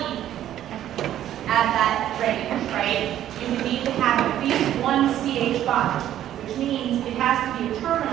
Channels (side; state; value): left; quieter; 11.8 dB